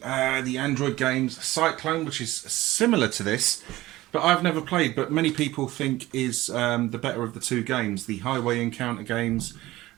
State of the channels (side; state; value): left; quieter; 17.4 dB